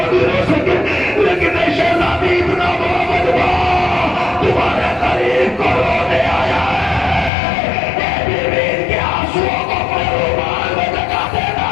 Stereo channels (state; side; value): drops out; right; at 7.3 s